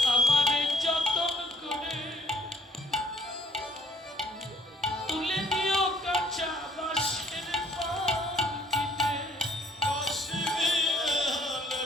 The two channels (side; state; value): both; normal; correlation 0.61